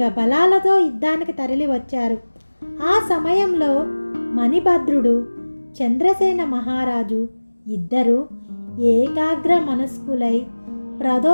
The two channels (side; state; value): both; inverted; correlation -1.00